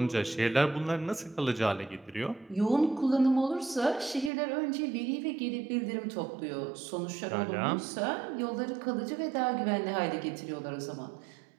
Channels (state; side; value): drops out; left; at 4.3 s